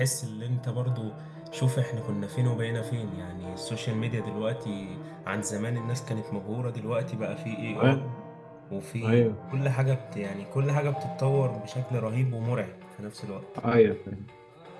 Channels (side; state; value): both; identical; correlation 1.00